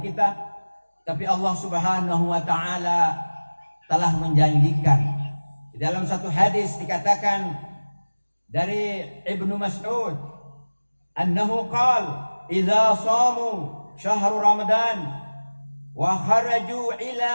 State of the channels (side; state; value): both; inverted; correlation -1.00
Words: Tapi Allah Subhanahu wa taala telah menjanjikan. Di dalam satu hadis dikatakan dari Ibnu Mas'ud annahu qala idza shamu syahr Ramadan wa kharaju ila